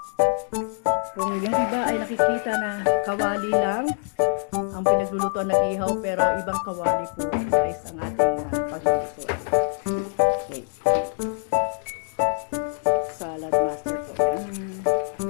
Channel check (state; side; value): silent; right; 62 dB below the other